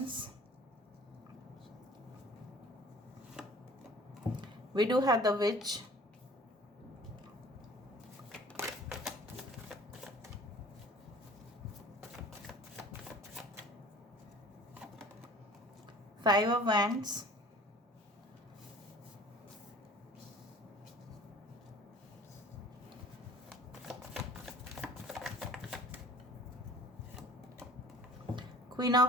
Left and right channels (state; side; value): normal; both; correlation 0.48